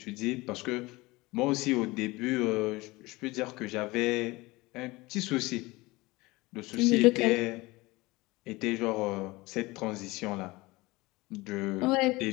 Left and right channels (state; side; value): quieter; right; 21.8 dB